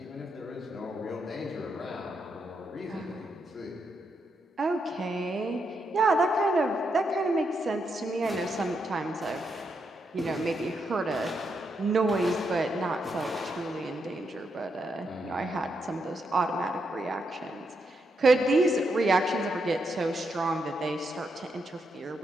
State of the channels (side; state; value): both; normal; correlation 0.81